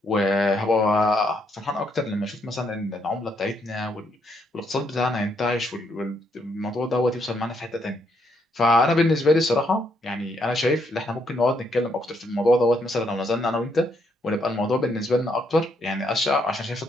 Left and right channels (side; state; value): both; normal; correlation 0.74